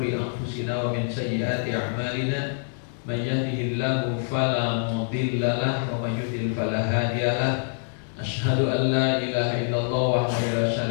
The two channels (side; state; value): right; silent; digital silence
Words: anfusina wa min sayyiati a'malina. Man yahdihillahu fala mudilla lahu wa man yudlil fala hadiya lahu. Asyhadu an la ilaha illallah wahdahu la